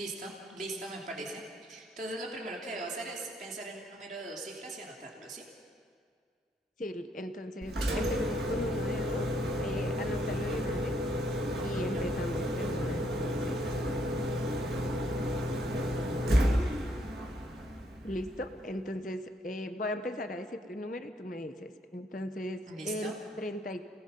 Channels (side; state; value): both; normal; correlation 0.71